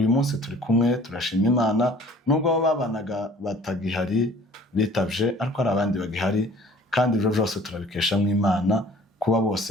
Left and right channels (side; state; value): both; normal; correlation 0.50